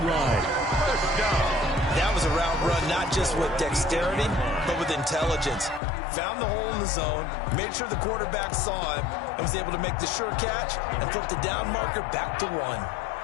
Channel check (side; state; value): right; drops out; at 5.8 s